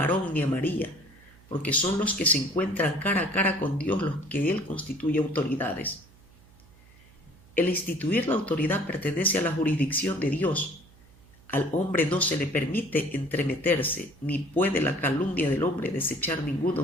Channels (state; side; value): noise; right; hum, 26 dB below the sound